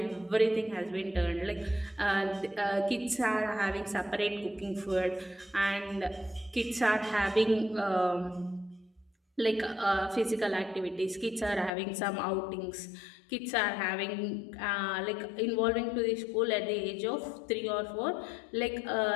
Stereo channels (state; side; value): drops out; right; at 11.7 s